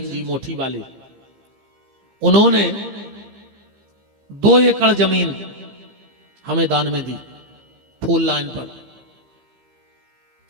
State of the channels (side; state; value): left; late; 15 ms